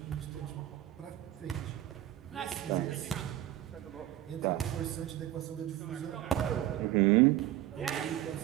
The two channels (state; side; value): quieter; left; 13.4 dB